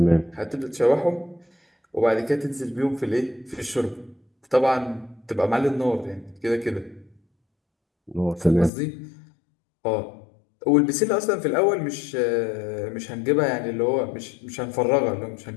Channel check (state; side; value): drops out; right; at 8.7 s